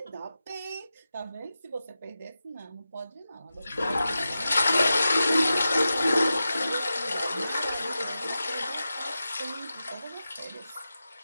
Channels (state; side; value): inverted; both; correlation -0.92